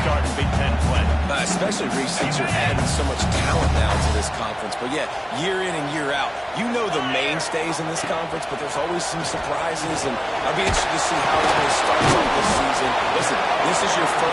start in Big Ten play. Especially, Reese, since you're adding so much talent now to this conference. But, yeah, year in and year out, you know the mainstays in this conference, but there's always some surprises, and I'll be interested to see how it's going to start this season. Listen, this is your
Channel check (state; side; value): identical; both; correlation 1.00